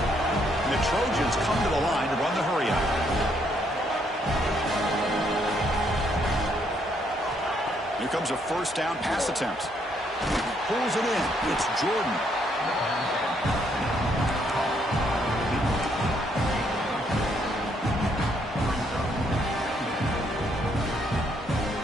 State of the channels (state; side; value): normal; both; correlation 0.71